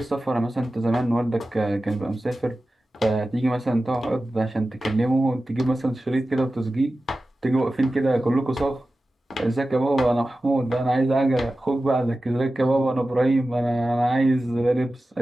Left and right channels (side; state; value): both; normal; correlation 0.95